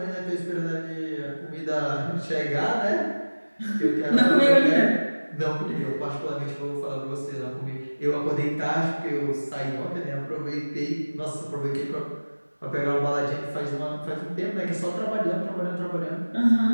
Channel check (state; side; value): inverted; both; correlation -1.00